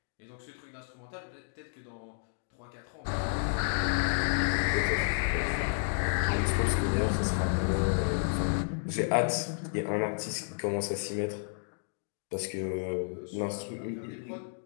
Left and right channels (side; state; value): right; silent; digital silence